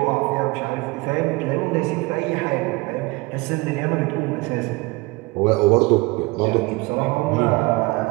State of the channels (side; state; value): left; quieter; 24.0 dB